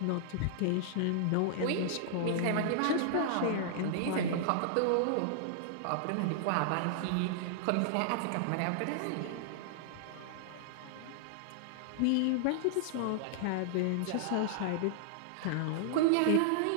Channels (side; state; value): both; different; correlation -0.01